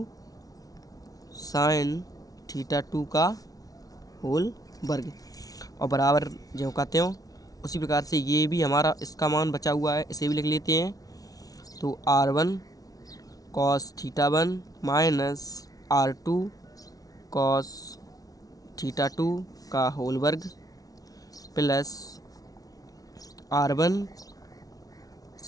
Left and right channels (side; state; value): right; late; 0.18 ms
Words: sine theta 2 का होल वर्ग, और बराबर जो कहते हो उसी प्रकार से ये भी हमारा इसका मान बचा हुआ है, इसे भी लिख लेते हैं। तो R1 cos theta 1 minus R2 cos theta 2 का होल वर्ग plus R1